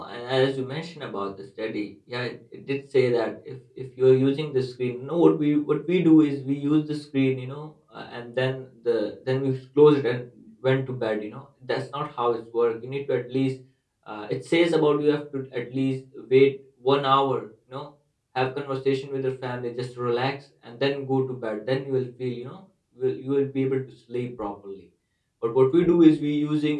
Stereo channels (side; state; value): both; identical; correlation 1.00